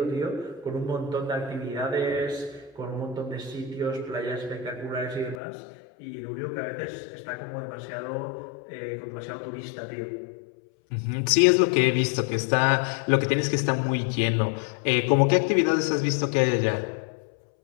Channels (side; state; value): right; drops out; at 5.4 s